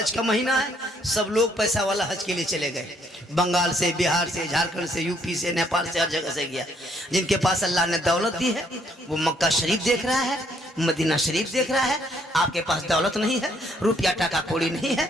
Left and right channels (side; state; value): both; normal; correlation 0.68